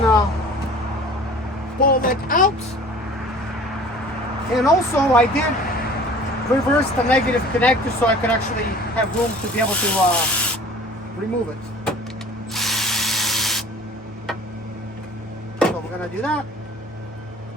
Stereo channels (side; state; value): both; normal; correlation 0.46